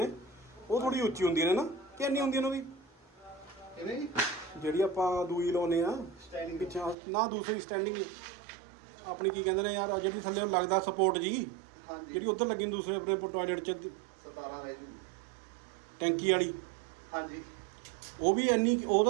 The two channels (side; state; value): left; drops out; at 7.0 s